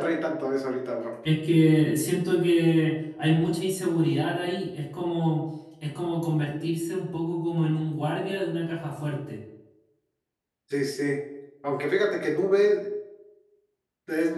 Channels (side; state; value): both; identical; correlation 1.00